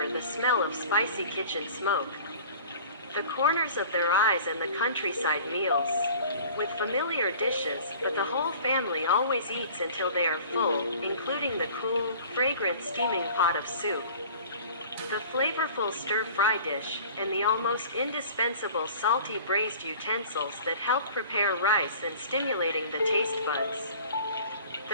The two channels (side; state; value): both; inverted; correlation -0.45